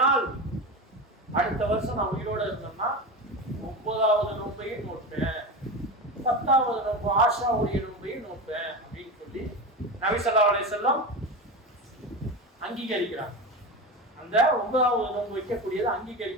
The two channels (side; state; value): both; normal; correlation 0.23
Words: அடுத்த வருஷம் நான் உயிரோடு இருந்தோம்னா 9வது நோன்பையும் நோட்பேன், 10வது நோன்பு ஆஷாவுடைய நோன்பையும் நோட்பேன் அப்படின்னு சொல்லி நபி ஸல்லல்லாஹு அலைஹி வஸல்லம் அங்கீகரிக்கிறாங்க. அந்த 9வது நோன்பு வைக்கக்கூடியதை